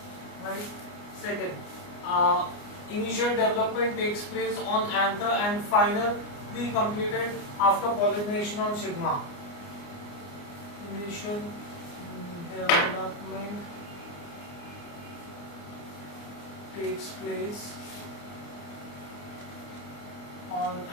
right? Second, initial development takes place on anther and finally completed after pollination on stigma. Initial development takes place on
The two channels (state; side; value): late; right; 29 ms